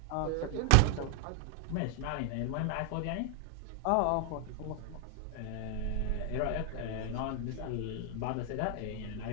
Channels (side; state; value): both; different; correlation 0.00